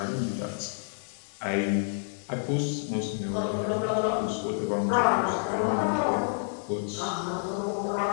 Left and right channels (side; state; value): right; silent; 59 dB below the other